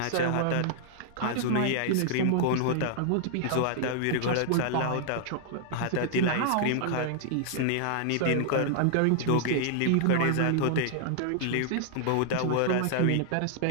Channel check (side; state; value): both; different; correlation -0.01